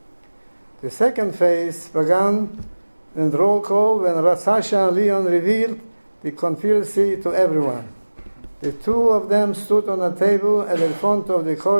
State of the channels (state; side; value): inverted; both; correlation -1.00